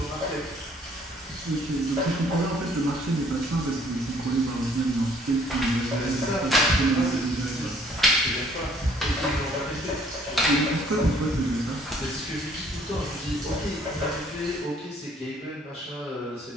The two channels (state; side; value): normal; both; correlation 0.60